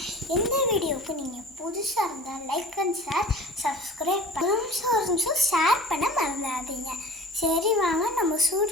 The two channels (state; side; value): normal; both; correlation 0.41